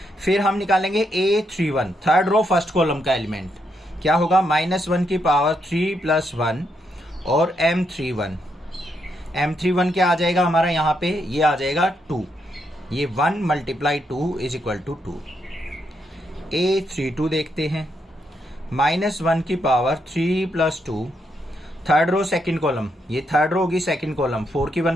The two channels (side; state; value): both; normal; correlation 0.79